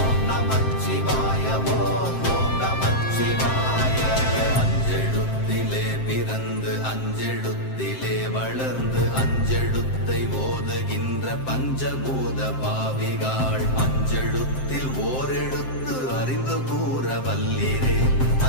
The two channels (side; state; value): right; late; 7.7 ms